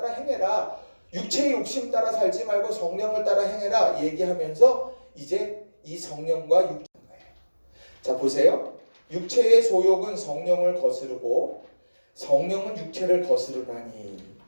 행해라. 육체의 욕심 따라 살지 말고 성령을 따라 행해라 얘기하면서 이제 이 성령과 육체인 거예요. 자, 보세요. 육체의 소욕은 성령을 거스르고 성령은 육체를 거스르나니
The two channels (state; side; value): inverted; both; correlation -1.00